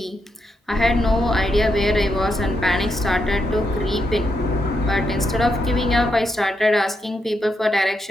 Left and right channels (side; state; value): both; normal; correlation 0.81